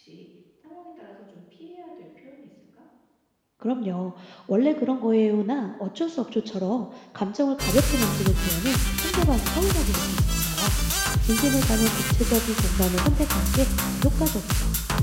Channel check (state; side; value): identical; both; correlation 1.00